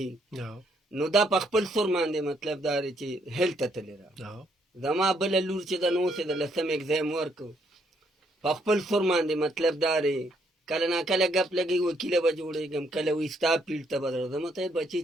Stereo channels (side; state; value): both; normal; correlation 0.71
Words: نو دا په خپل سور باندې مطلب دا دی چې هیلت ته تللی ده. زما بله لور چې ده نو اوس یې د 10م اګزام ورکړو، په خپل سور باندې مطلب دا دی کله نا کله ګپ لګي وکیله به جوړېږم، کله وایي ستا فیلډ ته به درځم. ته یې بچي